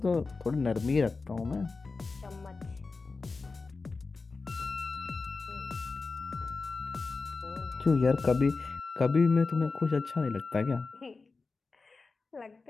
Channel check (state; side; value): quieter; right; 4.1 dB